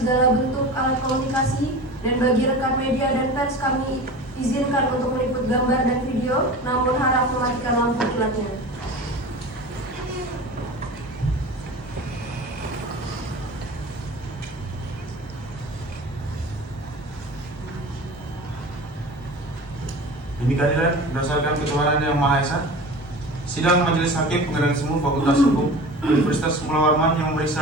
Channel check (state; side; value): normal; both; correlation 0.35